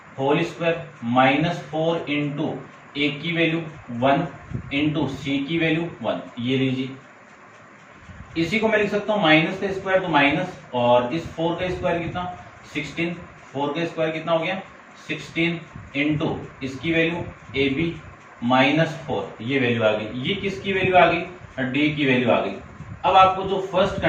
होल स्क्वायर, -4 इंटू ए की वैल्यू 1 इंटू सी की वैल्यू 1, ये लीजिए। इसी को मैं लिख सकता हूँ माइनस का स्क्वायर तो माइनस, और इस 4 का स्क्वायर कितना 16, 4 का स्क्वायर कितना हो गया 16 इंटू इसकी वैल्यू ए बी -4, ये वैल्यू आ गई। ये किसकी वैल्यू आ गई, डी की वैल्यू आ गई। अब आपको जो फर्स्ट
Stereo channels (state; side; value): identical; both; correlation 1.00